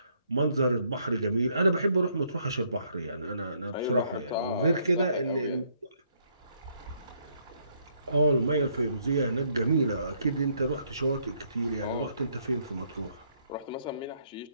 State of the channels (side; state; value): both; inverted; correlation -0.70